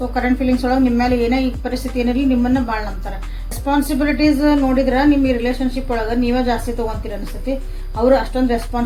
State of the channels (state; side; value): identical; both; correlation 1.00